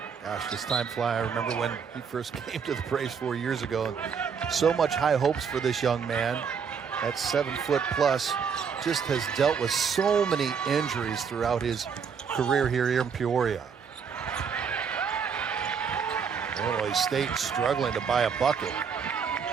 gosh, this time fly. I remember when he first came to the Braves 4 years ago. So much high hopes for this young man. That 7-foot plus just has dealt with so many injuries throughout his career here in Peoria. Illinois State struggling to buy a bucket.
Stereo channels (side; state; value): left; quieter; 6.5 dB